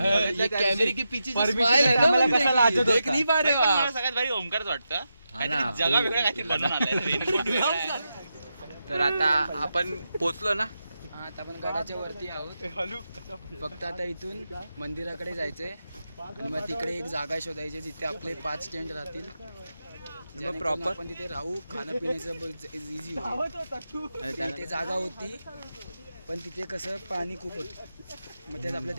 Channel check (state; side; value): inverted; both; correlation -0.88